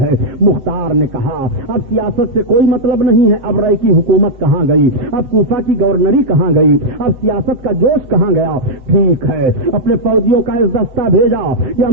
ہے. مختار نے کہا اب سیاست سے کوئی مطلب نہیں ہے, اب رائے کی حکومت کہاں گئی, اب کوفہ کی گورنری کہاں گئی, اب سیاست کا جوش کہاں گیا؟ ٹھیک ہے, اپنے فوجیوں کا اس دستہ بھیجا کہ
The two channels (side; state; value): left; late; 8.1 ms